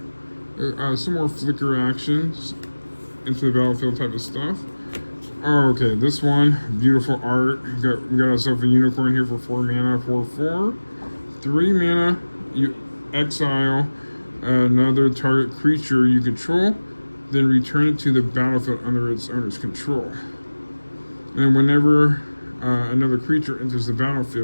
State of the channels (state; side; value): inverted; both; correlation -1.00